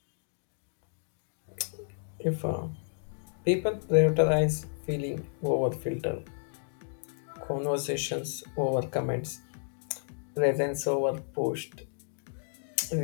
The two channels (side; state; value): right; silent; digital silence